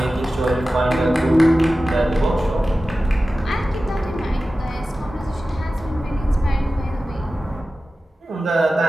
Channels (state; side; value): normal; both; correlation 0.95